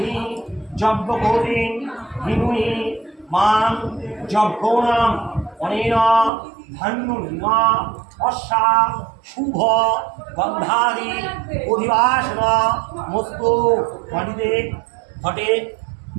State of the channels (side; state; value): left; drops out; at 6.3 s